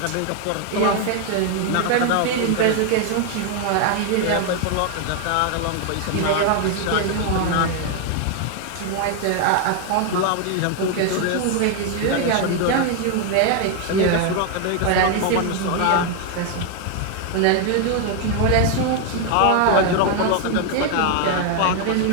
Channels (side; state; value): both; different; correlation 0.00